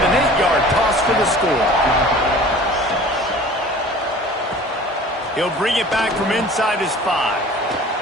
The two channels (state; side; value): normal; both; correlation 0.44